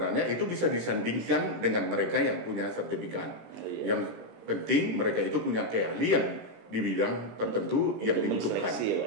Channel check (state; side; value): late; left; 17 ms